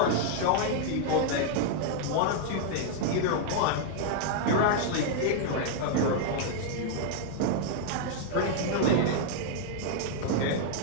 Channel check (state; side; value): different; both; correlation 0.00